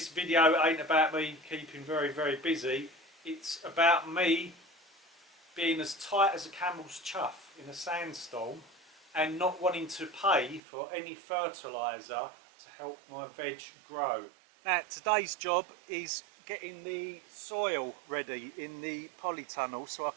video ain't about me keeping very busy. It's about me being as tight as a camel's chuff in a sandstorm and not wanting to pay for any fertiliser to help my veg grow. Now today's job is getting the soil ready in the polytunnel so I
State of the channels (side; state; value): left; drops out; at 10.6 s